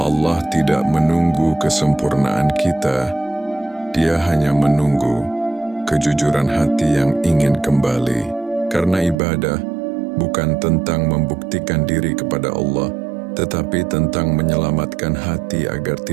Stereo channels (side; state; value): left; drops out; at 9.2 s